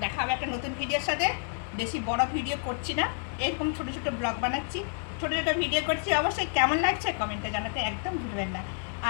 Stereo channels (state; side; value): silent; right; 58 dB below the other